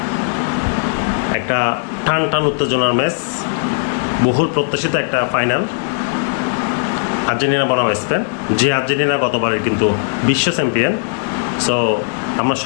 একটা টান টান উত্তেজনার ম্যাচ, বহুল প্রত্যাশিত একটা ফাইনাল। আর্জেন্টিনা বনাম স্পেন, যে আর্জেন্টিনা গতবারের কিন্তু বিশ্ব চ্যাম্পিয়ন। সো আমরা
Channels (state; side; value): silent; right; 67 dB below the other